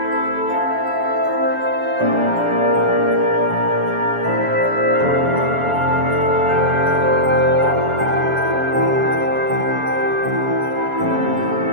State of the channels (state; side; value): late; left; 7.1 ms